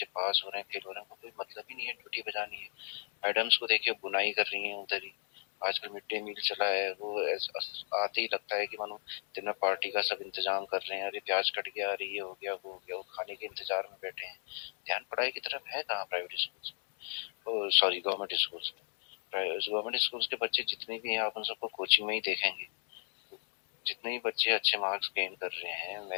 पास हो रहे हैं फेल हो रहे हैं, उनको कोई मतलब ही नहीं है, ड्यूटी बजानी है। मैडम्स को देखिए बुनाई कर रही हैं उधर ही, आजकल मिड डे मील चला है, वो आते ही लगता है कि मानो दिन में पार्टी का सब इंतजाम कर रहे हैं, अरे प्याज कट गया, अरे ये हो गया वो हो गया, वो खाने के इंतजार में बैठे हैं। ध्यान पढ़ाई की तरफ है कहाँ private school, sorry government schools में। गवर्नमेंट स्कूल्स के बच्चे जितने भी हैं आप उन सबको कोचिंग में ही देखेंगे। जितने भी बच्चे अच्छे मार्क्स गेन कर रहे हैं,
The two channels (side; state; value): right; silent; digital silence